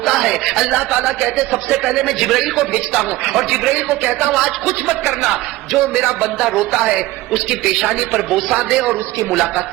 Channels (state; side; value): quieter; left; 17.9 dB